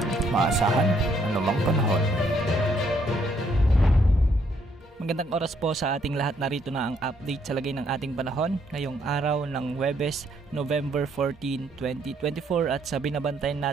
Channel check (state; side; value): normal; both; correlation 0.70